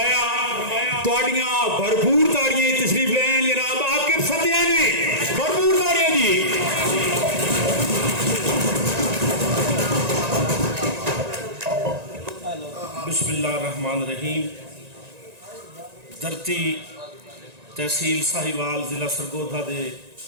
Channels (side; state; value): left; late; 1.9 ms